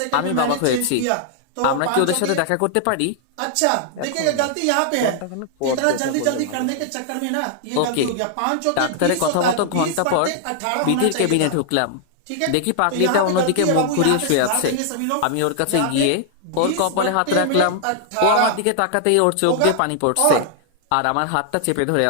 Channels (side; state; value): both; different; correlation 0.00